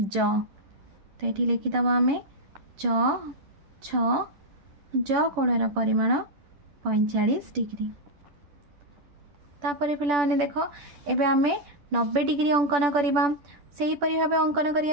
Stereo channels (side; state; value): left; late; 10 ms